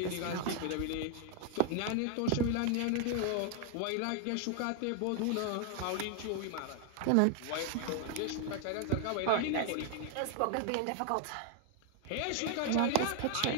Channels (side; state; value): both; different; correlation 0.00